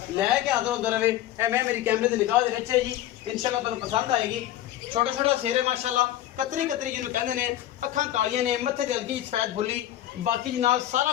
लैके हाजिर होंदा रहे। मैं मेरी कैमरे से निगाह दे विच है जी इंशाल्लाह तुहानू पसंद आएगी। छोटा छोटा सिर है माशाल्लाह कतरी कतरी जिन्होंने कहते हैं अखां कालियां ने मत्थे ते हल्की सफेद फुल्ली। बाकी जनाब सारा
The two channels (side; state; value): right; quieter; 13.1 dB